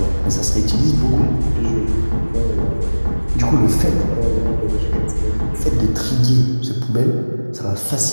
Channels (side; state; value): both; inverted; correlation -1.00